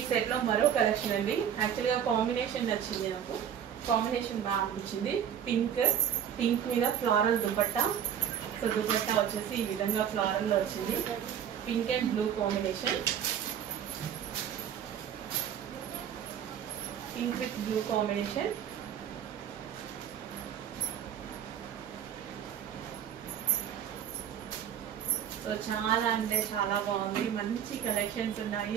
సెట్ లో మరో కలెక్షన్ అండి. యాక్చువల్ గా కాంబినేషన్ నచ్చింది నాకు, కాంబినేషన్ బాగా అనిపించింది. పింక్ మీద ఫ్లారల్ దుపట్టా. సో దుపట్టా వచ్చేసి ఈ విధంగా ఫ్లారల్ లో వచ్చింది. Pink and blue combination, pink with blue combination. So చాలా అంటే చాలా బాగుంది, మంచి కలెక్షన్స్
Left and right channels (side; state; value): left; quieter; 9.1 dB